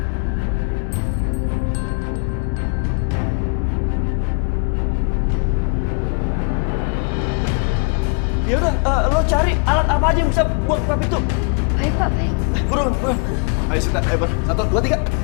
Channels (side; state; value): right; quieter; 37.8 dB